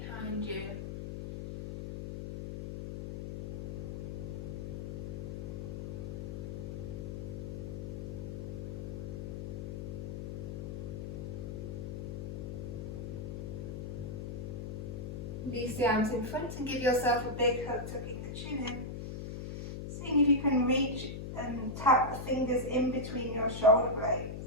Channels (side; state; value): left; noise; hum, 6 dB below the sound